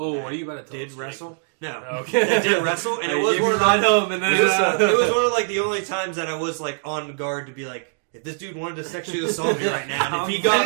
Oh, what are you about to tell Did us, wrestle? No, okay. That did wrestle, and it was one of ride home, and then it was one of like the only times that I was like on guard to be like, if this dude wanted to sexually assault me right now, and if he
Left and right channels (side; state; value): left; silent; digital silence